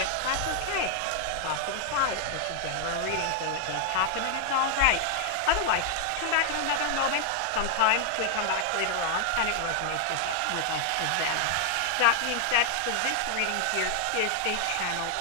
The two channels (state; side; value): different; both; correlation 0.00